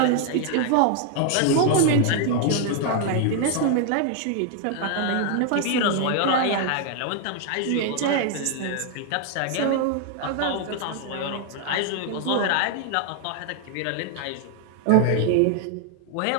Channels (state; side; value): different; both; correlation 0.00